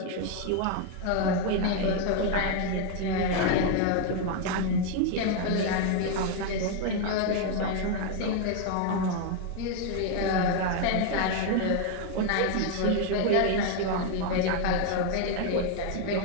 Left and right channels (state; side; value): different; both; correlation 0.01